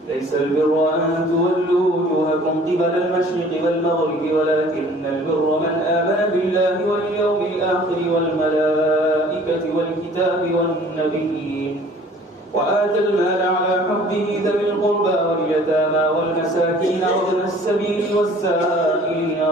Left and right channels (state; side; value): normal; both; correlation 0.51